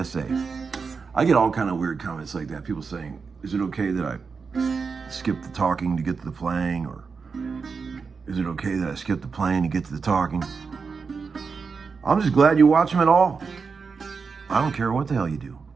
say. I get all kind of weird comments like that. People saying, is it okay that I skip the talking to get to the playing? Or is it okay that I skip the playing to get to the talking? I'm just glad you watch them at all. I don't care what the hell you do.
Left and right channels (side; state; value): left; quieter; 5.2 dB